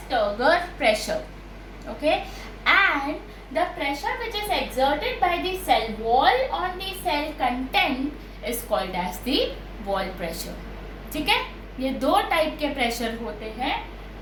Turgor pressure. Okay, and the pressure which is exerted by the cell wall on the cell content is called as the wall pressure. ठीक है, ये दो type के pressure होते हैं,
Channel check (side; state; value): both; identical; correlation 1.00